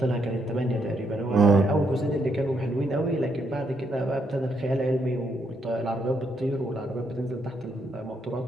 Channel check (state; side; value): normal; both; correlation 0.76